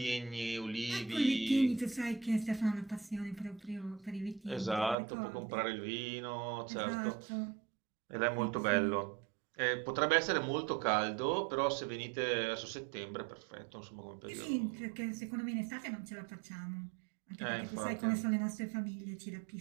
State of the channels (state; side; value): drops out; left; at 5.0 s